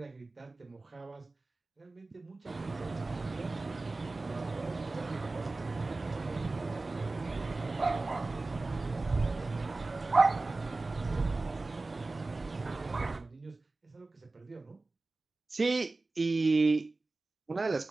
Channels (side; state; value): left; quieter; 3.3 dB